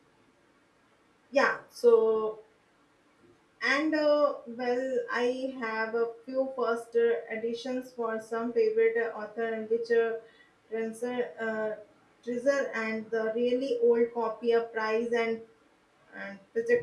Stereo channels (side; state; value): both; identical; correlation 1.00